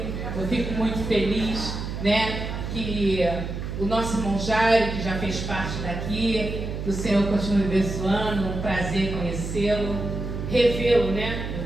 Eu fico muito feliz, né, que o nosso irmão Jairo, que já fez parte daqui, que o Senhor continue abençoando, um prazer conhecê-lo, revê-lo, né? Eu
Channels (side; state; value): right; noise; hum, 5 dB below the sound